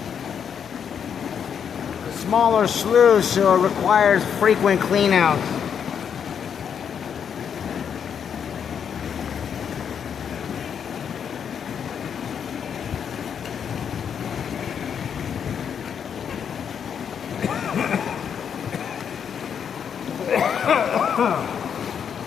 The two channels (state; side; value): quieter; right; 7.7 dB